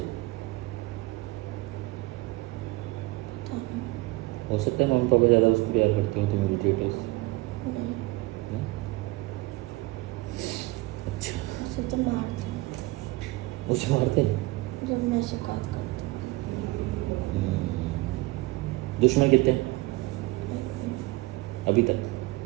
पता नहीं। हो सकता है मम्मी पापा ज़्यादा उसको प्यार करते हो, तुम इरिटेट हो इससे? नहीं, नहीं? अच्छा, उसे तो मारते हैं उसे मारते हैं? जब मैं शिकायत करती हूँ। दुश्मन कितने हैं एक भी अभी तक?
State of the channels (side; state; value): left; quieter; 21.0 dB